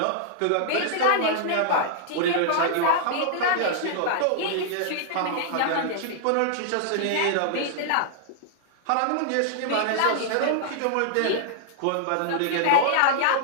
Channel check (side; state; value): both; different; correlation -0.01